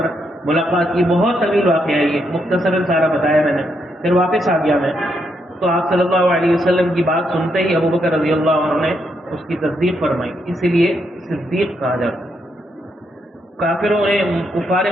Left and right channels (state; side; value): normal; both; correlation 0.78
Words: ملاقات کی. بہت طویل واقعہ ہے یہ, مختصراً سارا بتایا میں نے. پھر واپس آ گیا میں, تو آپ صلی اللہ علیہ وسلم کی بات سنتے ہی ابوبکر رضی اللہ عنہ نے اس کی تصدیق فرمائی, اسی لیے صدیق کہا جاتا ہے. کافروں نے, کفار